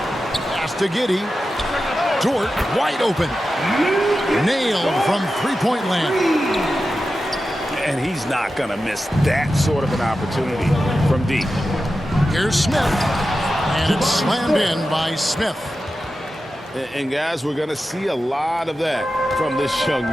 to Giddey. Dort wide open. Nailed from three-point land. And he's not going to miss that sort of an opportunity from deep. Here's Smith. And it's slammed in by Smith. And guys, we're going to see a lot of that from this young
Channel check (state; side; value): normal; both; correlation 0.92